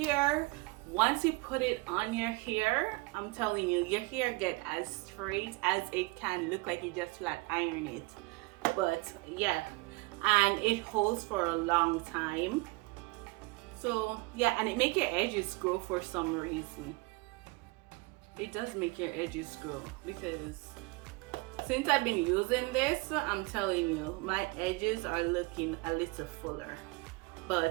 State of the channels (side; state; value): left; quieter; 25.2 dB